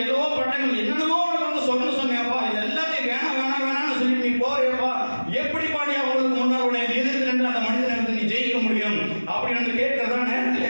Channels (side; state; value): both; inverted; correlation -1.00